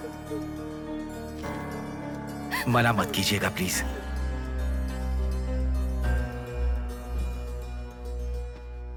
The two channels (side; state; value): both; identical; correlation 1.00